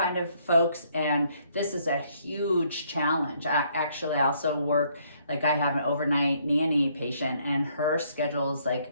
of folks. And this is a huge challenge. Actually, I also work, like I have an overnight nanny patient and her schedule is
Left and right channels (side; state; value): both; inverted; correlation -0.67